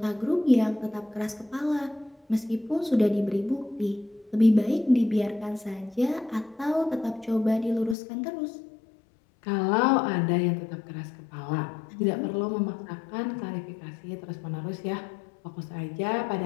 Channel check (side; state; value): right; drops out; at 8.0 s